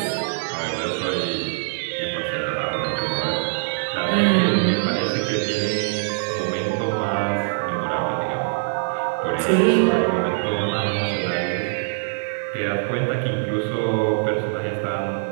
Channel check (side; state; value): left; silent; digital silence